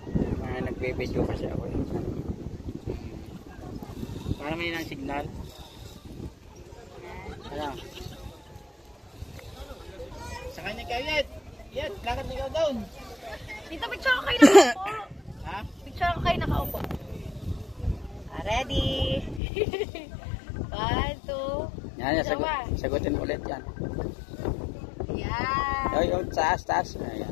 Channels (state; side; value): drops out; right; at 19.4 s